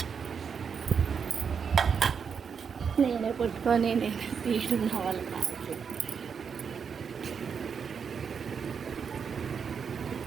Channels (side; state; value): left; quieter; 6.5 dB